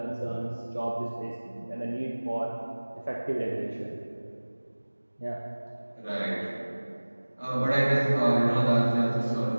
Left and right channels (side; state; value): both; inverted; correlation -1.00